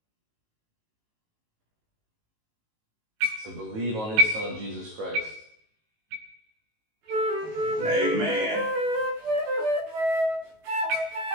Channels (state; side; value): late; left; 18 ms